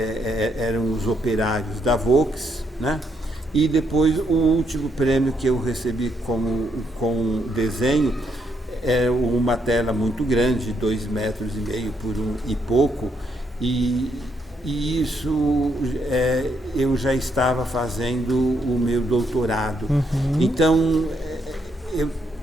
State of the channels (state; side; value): normal; both; correlation 0.76